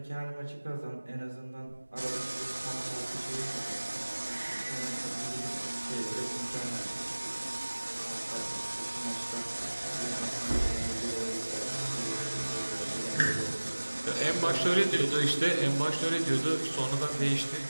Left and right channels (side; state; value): both; inverted; correlation -1.00